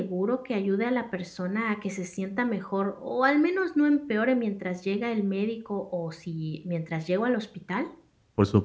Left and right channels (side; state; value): both; identical; correlation 1.00